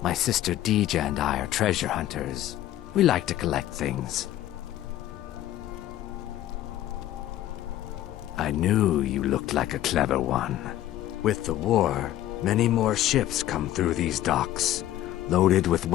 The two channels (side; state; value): right; quieter; 13.4 dB